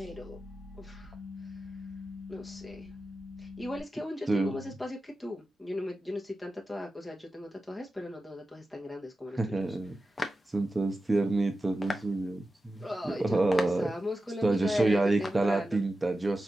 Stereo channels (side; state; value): both; normal; correlation 0.93